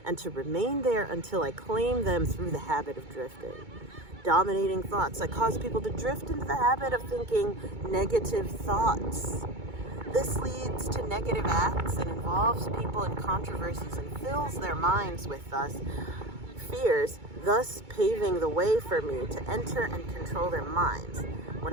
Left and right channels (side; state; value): left; late; 2.2 ms